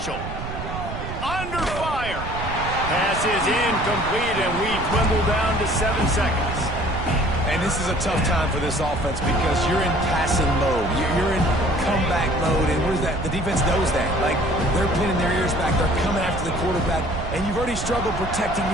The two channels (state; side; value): noise; right; rumble, 7 dB below the sound